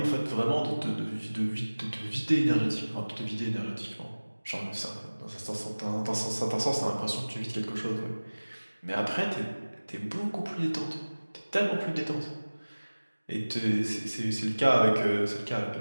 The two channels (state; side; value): inverted; both; correlation -1.00